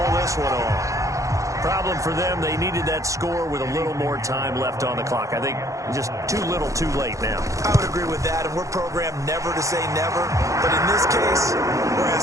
this one off. Problem for them, they needed that score with a little more time left on the clock. I think just too little too late now. I would agree with that, and we're programmed never to say never. But in this case, we're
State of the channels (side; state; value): left; late; 0.15 ms